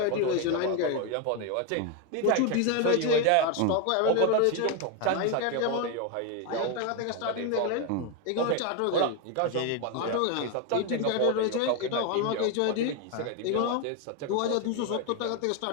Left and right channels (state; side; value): different; both; correlation 0.02